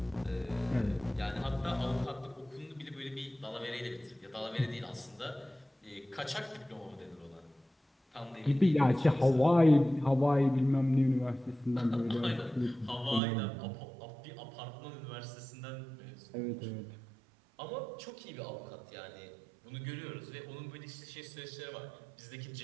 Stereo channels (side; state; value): left; drops out; at 13.2 s